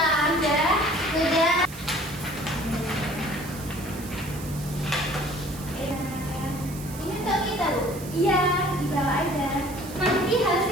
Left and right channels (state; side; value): noise; right; hiss, 15 dB below the sound